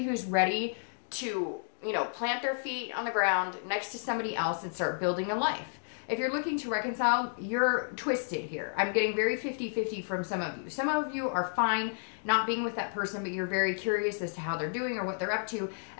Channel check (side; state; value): right; silent; digital silence